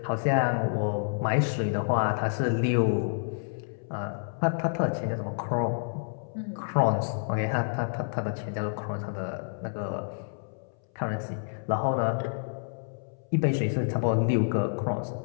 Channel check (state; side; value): silent; right; 59 dB below the other